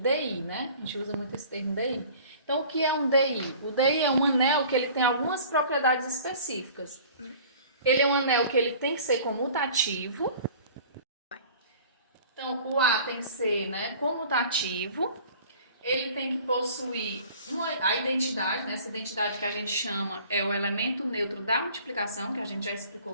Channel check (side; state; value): both; inverted; correlation -0.47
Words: né? A gente usa muito esse termo DI. Então, o que é um DI? O DI é um anel que ele tem algumas propriedades específicas. Ele é um anel que ele tem que ser comutativo. Então, o A tem que ser, né, comutativo. Ele tem que possuir a identidade, né, essa identidade que a gente chama é o elemento neutro da multiplicação, que a gente já